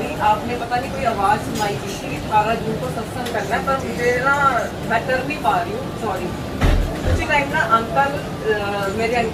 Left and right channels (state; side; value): identical; both; correlation 1.00